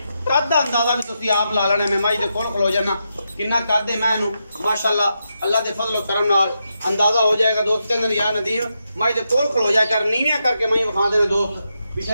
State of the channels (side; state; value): both; inverted; correlation -0.85